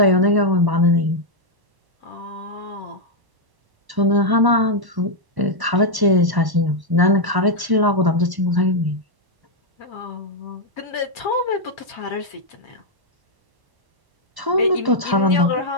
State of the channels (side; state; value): left; late; 1.1 ms